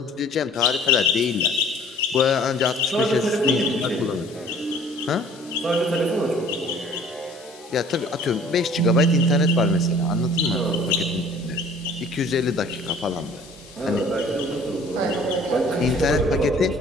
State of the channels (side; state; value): both; normal; correlation 0.51